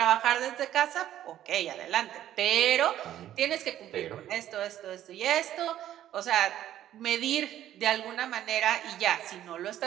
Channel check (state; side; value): quieter; left; 12.1 dB